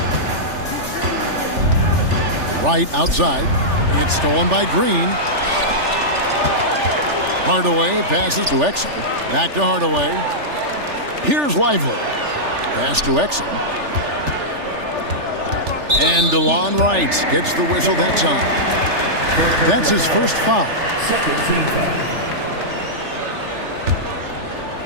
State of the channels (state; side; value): late; left; 3.4 ms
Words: Wright outside. It's stolen by Green. Hardaway passes to Exum. Back to Hardaway. Here's Lively. Pass to Exum. And DeLon Wright gets the whistle that time. That's his first foul. Second team foul.